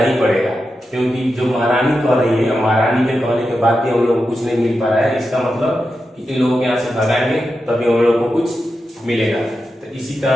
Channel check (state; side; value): normal; both; correlation 0.89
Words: ही पड़ेगा, क्योंकि जो महारानी कह रही है, महारानी के कहने के बाद भी हम लोग को कुछ नहीं मिल पा रहा है। इसका मतलब कि इन लोगों के यहाँ से भगाएंगे तभी हम लोग को कुछ मिलेगा। तो इसी